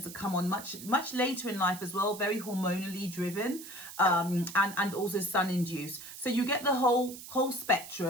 to come on much later in life as well, very hormonally driven, and also sun induced. So you get the whole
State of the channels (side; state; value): right; noise; hiss, 13 dB below the sound